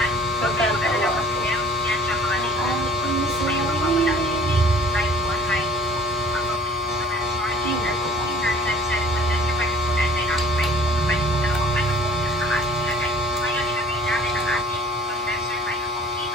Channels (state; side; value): normal; both; correlation 0.51